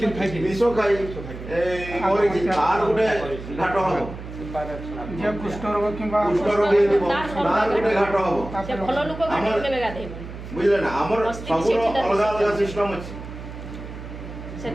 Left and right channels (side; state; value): right; noise; hum, 11 dB below the sound